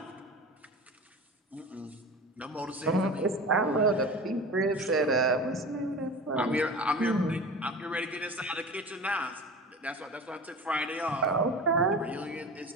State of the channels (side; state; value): both; normal; correlation 0.34